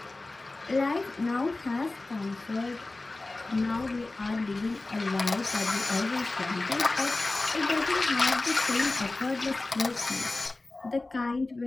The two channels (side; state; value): right; quieter; 3.1 dB